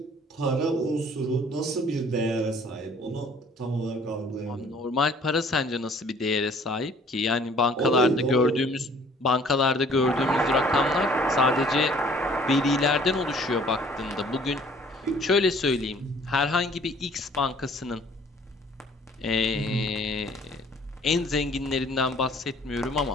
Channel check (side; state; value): both; normal; correlation 0.55